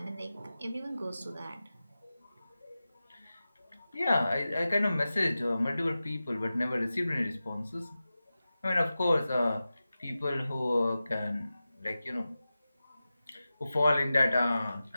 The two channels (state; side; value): inverted; both; correlation -0.94